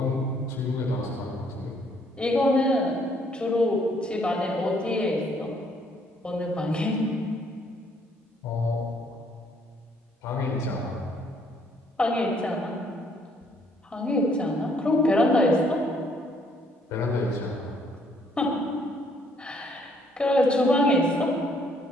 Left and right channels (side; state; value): both; normal; correlation 0.66